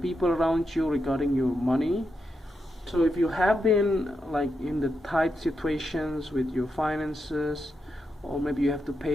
around you regarding your money. So if you have been like in the tight situations with your finances, or maybe you have to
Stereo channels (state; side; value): normal; both; correlation 0.85